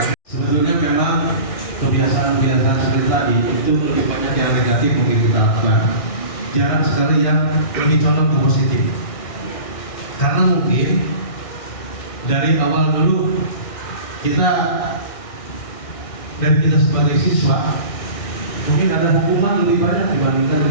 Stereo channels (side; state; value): right; late; 1.6 ms